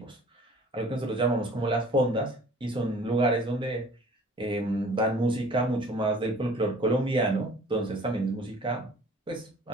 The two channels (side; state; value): both; normal; correlation 0.49